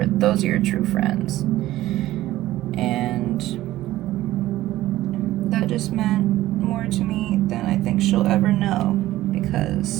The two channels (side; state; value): left; quieter; 15.4 dB